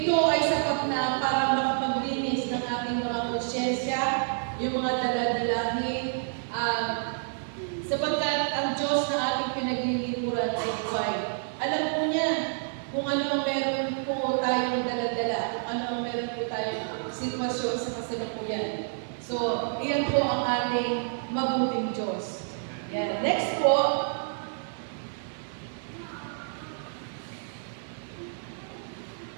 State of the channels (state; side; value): silent; left; 59 dB below the other